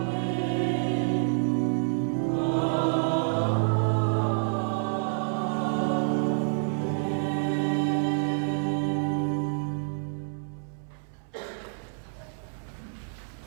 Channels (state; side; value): silent; left; 59 dB below the other